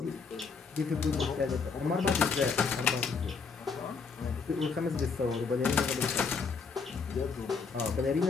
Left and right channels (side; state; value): right; quieter; 5.1 dB